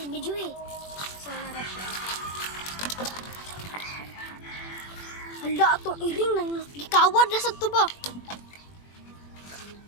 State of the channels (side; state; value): right; late; 21 ms